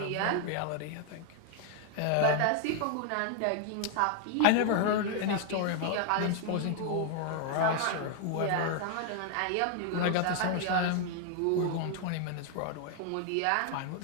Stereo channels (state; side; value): different; both; correlation 0.00